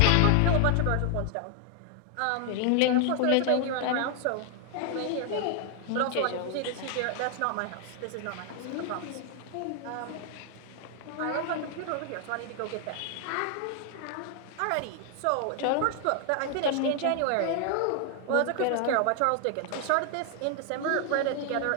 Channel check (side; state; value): both; different; correlation 0.00